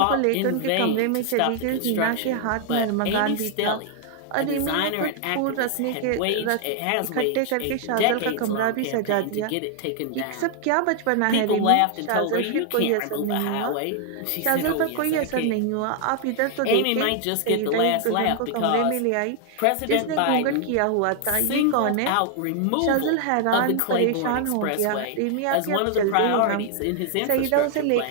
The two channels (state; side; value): different; both; correlation 0.00